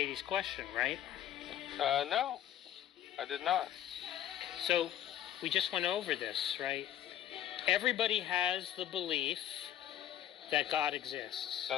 question, right? No, I did not. So we just went over this, right? Everybody has the belief that God exists.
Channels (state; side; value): quieter; right; 11.5 dB